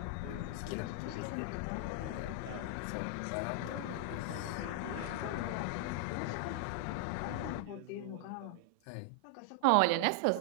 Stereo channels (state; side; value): different; both; correlation -0.01